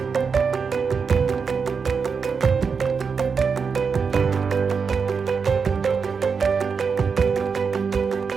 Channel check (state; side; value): quieter; left; 5.7 dB